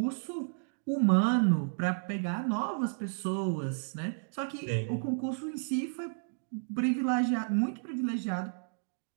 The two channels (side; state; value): left; silent; digital silence